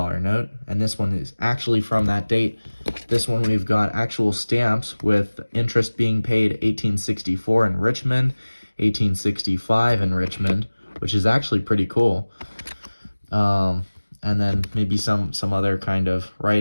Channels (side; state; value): both; inverted; correlation -1.00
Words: note, and this one is actually from that date. This one we've got actual stamps with interest being paid 1864 in Richmond, 1865 in Richmond, which is actually pretty cool. And then maybe some other kind of